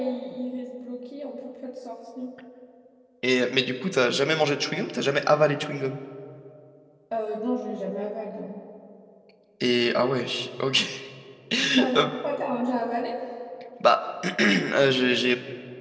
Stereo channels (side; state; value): both; identical; correlation 1.00